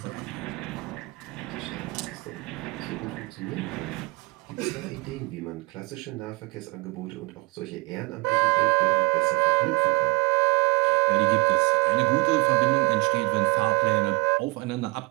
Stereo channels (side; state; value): left; quieter; 25.5 dB